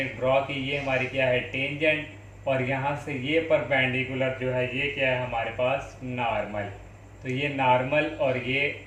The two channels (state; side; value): identical; both; correlation 1.00